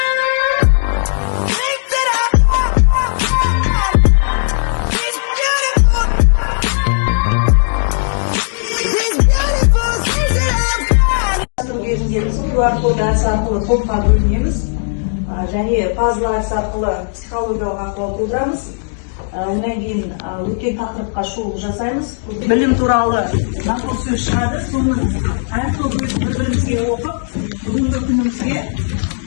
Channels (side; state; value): right; silent; digital silence